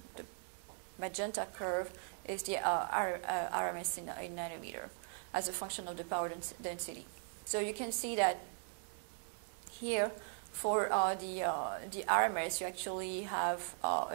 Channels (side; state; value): left; silent; 52 dB below the other